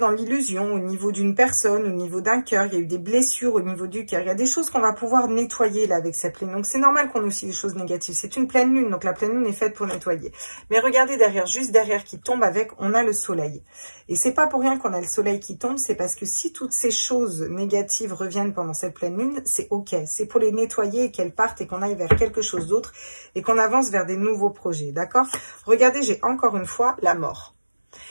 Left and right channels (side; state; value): both; inverted; correlation -1.00